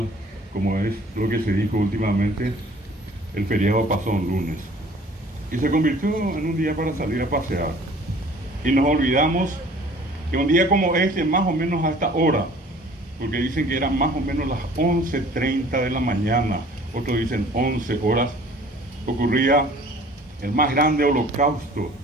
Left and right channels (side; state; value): both; normal; correlation 0.51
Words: como es lo que se dijo últimamente, el feriado pasó un lunes. Y se convirtió en un día para salir a pasear. Y nos olvidamos que un día como este, más o menos a esta hora, porque dicen que eran más o menos las 11:30 de la mañana, otros dicen 11 horas, ocurría el más grande holocausto